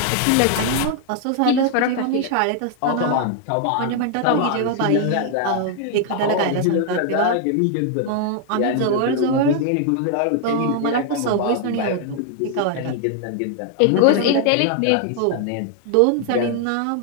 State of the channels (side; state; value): both; different; correlation 0.00